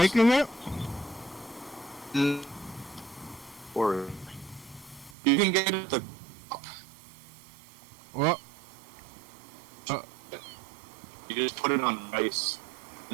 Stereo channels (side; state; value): left; drops out; at 5.2 s